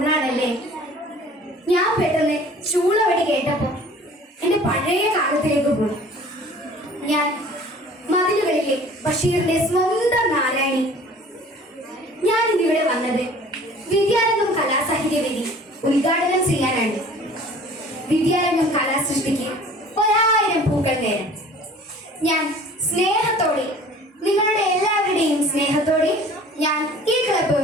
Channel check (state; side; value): normal; both; correlation 0.48